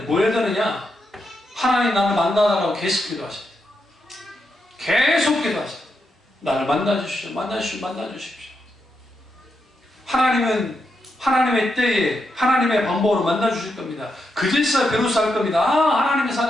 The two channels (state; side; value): normal; both; correlation 0.84